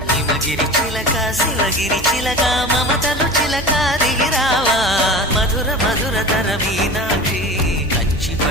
హిమగిరి చిలక శివగిరి చిలక మమతలు చిలక దిగిరావా మధుర మధుర తర మీనాక్షి కంచి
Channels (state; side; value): noise; right; hum, 12 dB below the sound